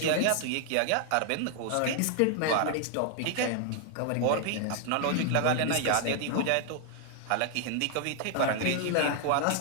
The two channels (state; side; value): different; both; correlation 0.00